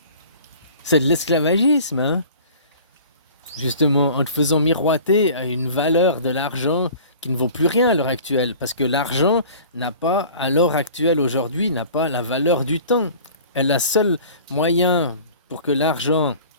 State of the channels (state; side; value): inverted; both; correlation -0.44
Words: C'est de l'esclavagisme, hein. Justement, en te faisant miroiter à une valeur de l'argent qui ne vaut plus rien à l'heure actuelle. Parce que l'argent n'a pas, à l'heure actuelle, aujourd'hui, n'a pas la valeur du temps. Et le seul moyen pour que l'argent